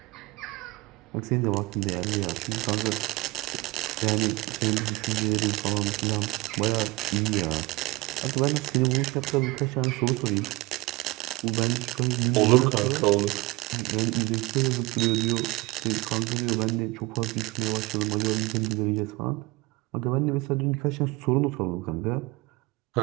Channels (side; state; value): left; quieter; 22.4 dB